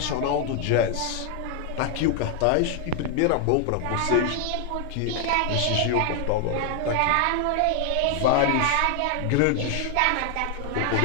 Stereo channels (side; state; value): both; different; correlation 0.00